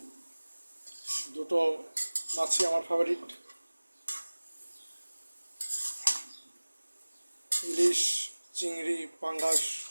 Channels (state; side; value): inverted; both; correlation -1.00